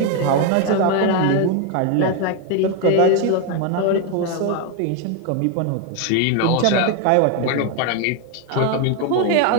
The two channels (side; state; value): both; different; correlation 0.01